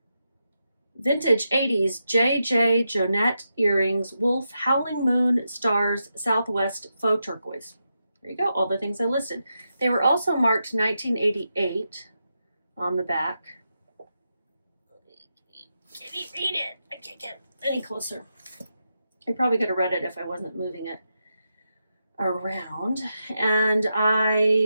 Vintage 80s JJ Jonette earrings, wolf, howling moon, stars, Southwest, faux turquoise. There you go, all the things I listed. They were also marked 1988 on the back. Can you read it? I can't get any closer. I probably could have read it if I wasn't moving it around. And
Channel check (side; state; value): both; inverted; correlation -0.86